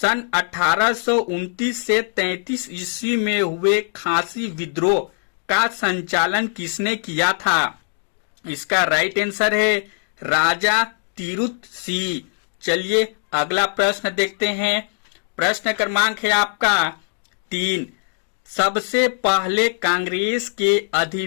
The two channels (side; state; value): right; silent; 65 dB below the other